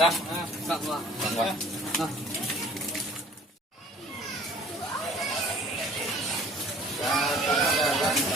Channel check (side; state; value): both; normal; correlation 0.52